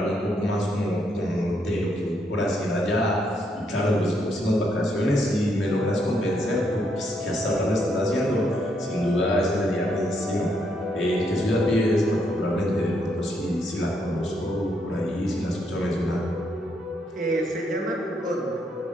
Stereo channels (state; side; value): normal; both; correlation 0.75